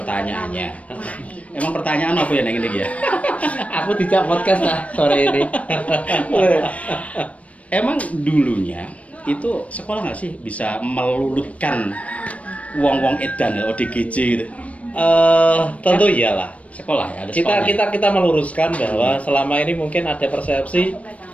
Emang pertanyaan apa ya yang ini ya? Aku tidak podcast lah sore ini. Emang dulunya itu sekolah nggak sih bisa melulutkan wong-wong edan ODGJ gitu? Tentu iyalah. Sekolah ya, ada sekolah. Kita meluruskan bahwa selama ini mungkin ada persepsi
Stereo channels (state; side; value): late; right; 0.065 ms